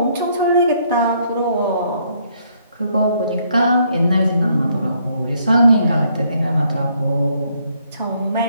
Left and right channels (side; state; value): both; inverted; correlation -0.69